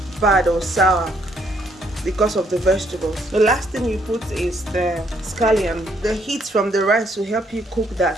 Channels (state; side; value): normal; both; correlation 0.70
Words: bad or sour because of the vegetables. The last thing you put is the scallion. The heat from the rice will help you cook